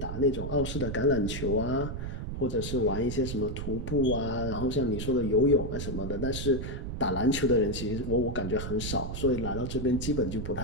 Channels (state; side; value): noise; right; rumble, 5 dB below the sound